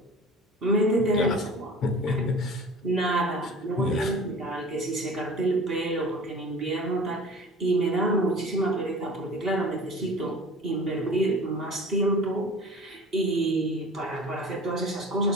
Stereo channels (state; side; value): normal; both; correlation 0.41